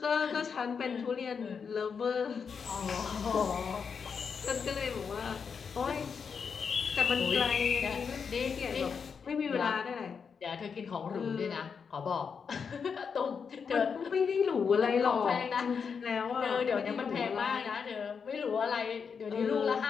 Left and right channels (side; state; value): right; quieter; 6.1 dB